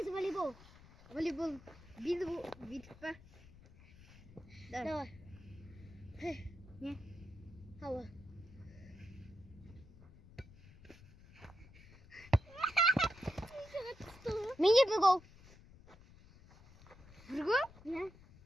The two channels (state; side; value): noise; left; rumble, 21 dB below the sound